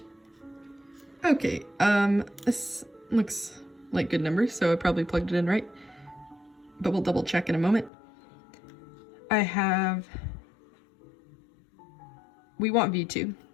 Okay, this looks like good numbers, so I probably plugged it in right, but we'll double check in a moment. We want V2.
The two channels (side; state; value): right; drops out; at 7.9 s